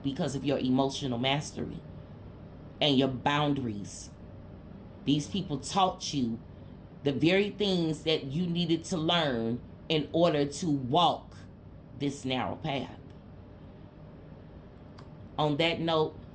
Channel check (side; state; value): both; identical; correlation 1.00